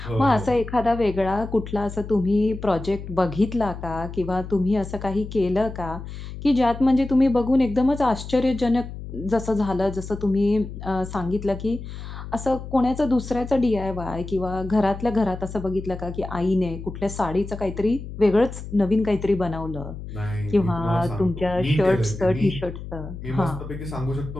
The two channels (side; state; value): left; noise; hum, 10 dB below the sound